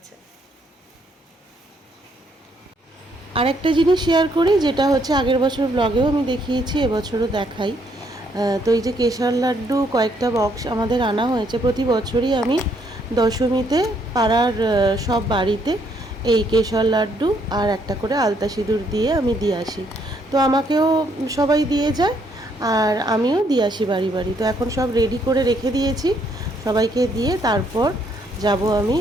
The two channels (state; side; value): normal; both; correlation 0.70